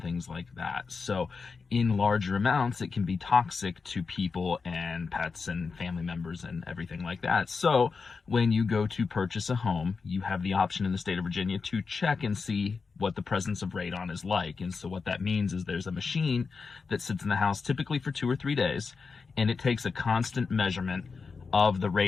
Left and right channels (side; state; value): right; quieter; 4.9 dB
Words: things like that. So in larger amounts, it can be toxic to people and pets and family members and everything like that. So when you go to purchase a home, you have the option in the state of Virginia to check and see what the presence of radon is like. And so what that means is there's a machine that sits in the house typically for 2 or 3 days, and it takes a constant measurement of the